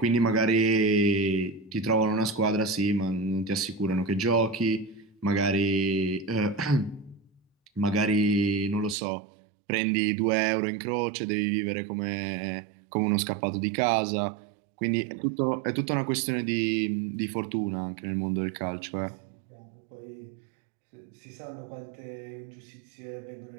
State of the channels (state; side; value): drops out; left; at 9.0 s